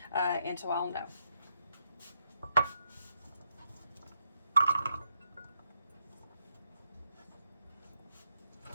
and so I'll know.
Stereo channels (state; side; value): inverted; both; correlation -0.78